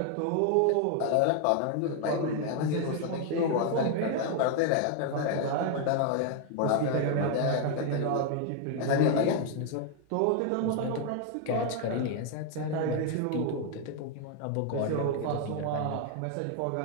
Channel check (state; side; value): different; both; correlation 0.00